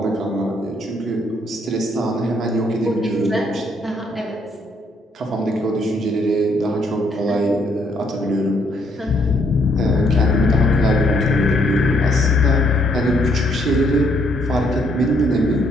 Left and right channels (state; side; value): normal; both; correlation 0.70